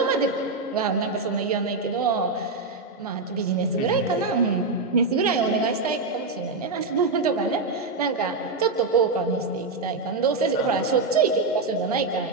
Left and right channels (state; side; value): quieter; left; 3.7 dB